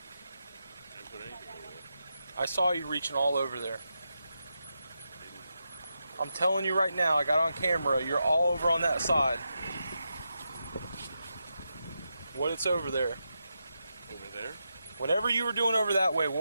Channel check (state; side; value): inverted; both; correlation -0.87